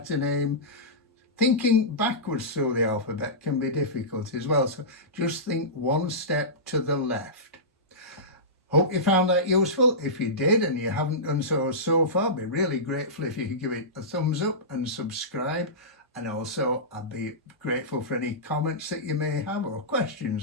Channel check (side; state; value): both; normal; correlation -0.17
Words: name. Thinking backwards through the alphabet can be difficult as well, so just think 1 step to the left. Hope you found that useful. If you did and you haven't done so far, I'd be really grateful if you could give it a thumbs up and subscribe. And also I'd be grateful for any comments that you may have or